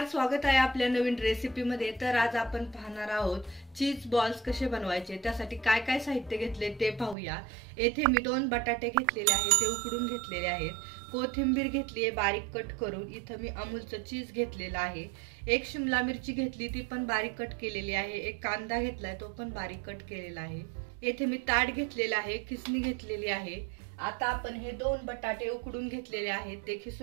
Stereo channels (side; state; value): left; drops out; at 7.2 s